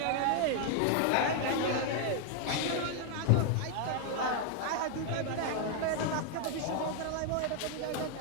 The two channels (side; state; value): both; different; correlation 0.00